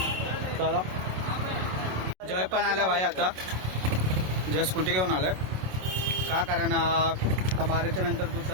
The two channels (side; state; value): left; late; 27 ms